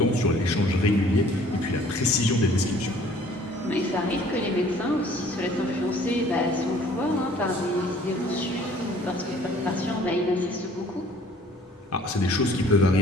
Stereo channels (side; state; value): both; normal; correlation 0.54